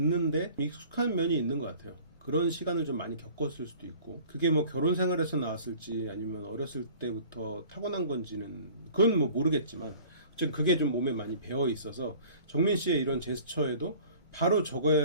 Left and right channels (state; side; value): inverted; both; correlation -0.48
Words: 익숙한 면이 있는 것 같아요. 그런 시간을 좀 많이 겪었을 수도 있고, 그게 뭐 결혼 생활에서 나왔을지 아니면 어렸을 때부터 타고난 건지는 그건 뭐 모르겠지만, 어쨌든 그게 좀 몸에 많이 배어 있어서 정민 씨의 이런 제스처에도 바로